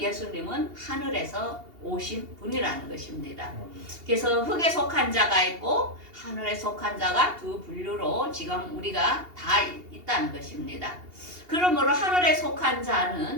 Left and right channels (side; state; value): left; late; 2.8 ms